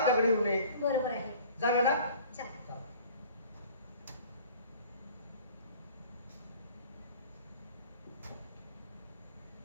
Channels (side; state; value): both; inverted; correlation -0.48